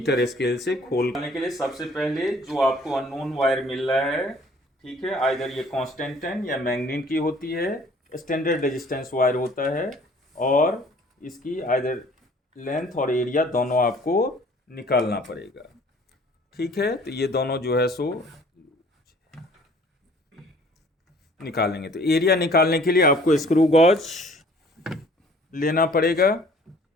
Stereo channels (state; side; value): normal; both; correlation 0.54